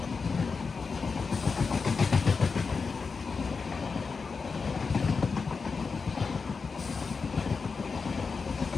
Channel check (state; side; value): quieter; right; 4.9 dB